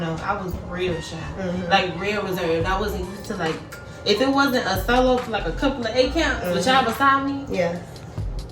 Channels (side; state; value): both; identical; correlation 1.00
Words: I was real shy. Like real reserved. I wasn't used to like, if it wasn't a solo for like a couple of 8 counts with y'all beside me. Yeah.